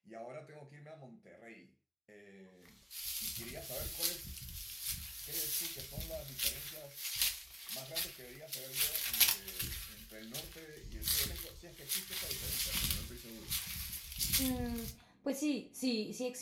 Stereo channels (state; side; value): identical; both; correlation 1.00